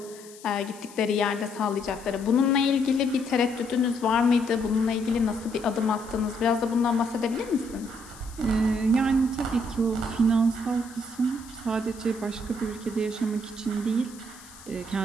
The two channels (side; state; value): left; noise; hiss, 20 dB below the sound